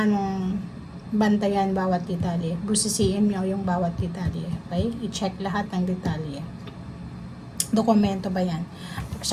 mong bantayan bawat detalye. Busisiin mo yung bawat detalye. Okay? I-check lahat ng detalye. Dokumento ba yan?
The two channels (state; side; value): identical; both; correlation 1.00